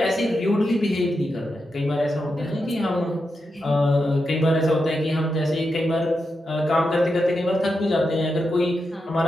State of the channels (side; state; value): both; normal; correlation 0.87